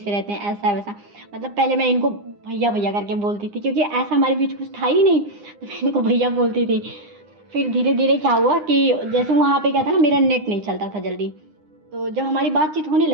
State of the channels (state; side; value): late; left; 9.8 ms